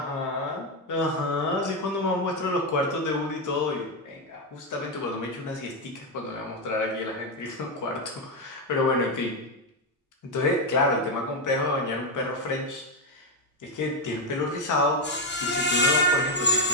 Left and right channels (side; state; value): both; normal; correlation 0.06